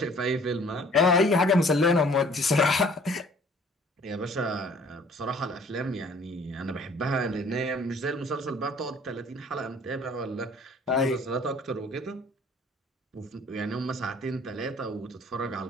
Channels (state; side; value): normal; both; correlation 0.54